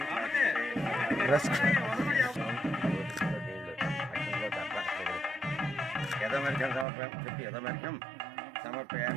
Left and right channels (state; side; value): drops out; left; at 6.9 s